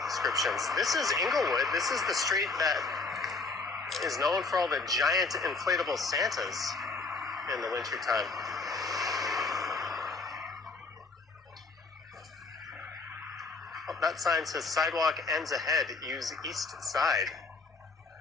descriptions. This is Inglewood. This is the street that is known for all the giant inflatable Santas in the wintertime. Oh, that sign says sidewalk ends ahead. Use east side.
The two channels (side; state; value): right; quieter; 4.0 dB